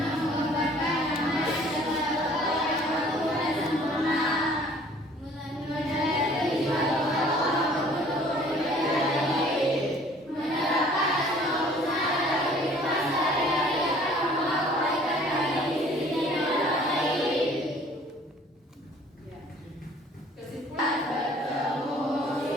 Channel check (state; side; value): normal; both; correlation 0.54